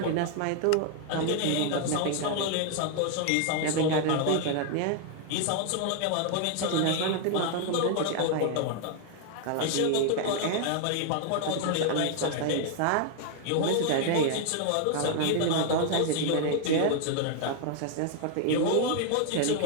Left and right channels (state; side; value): different; both; correlation 0.00